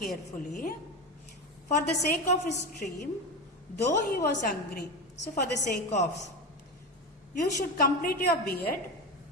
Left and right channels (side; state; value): both; normal; correlation 0.21